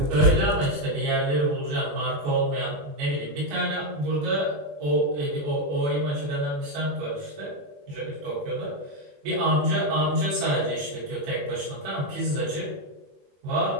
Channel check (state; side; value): late; left; 21 ms